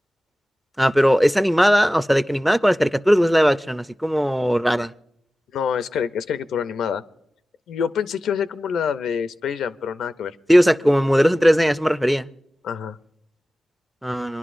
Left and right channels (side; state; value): both; normal; correlation 0.96